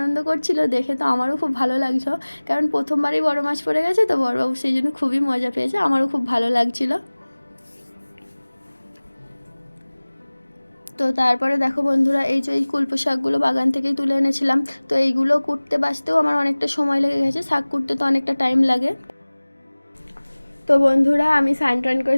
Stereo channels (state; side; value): inverted; both; correlation -1.00